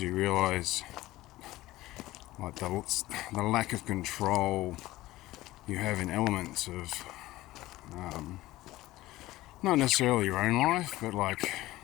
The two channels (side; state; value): right; quieter; 17.2 dB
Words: you realise like the lack of control you have in elements of not necessarily your own life, but like